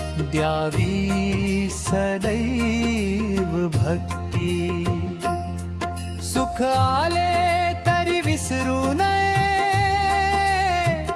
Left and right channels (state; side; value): identical; both; correlation 1.00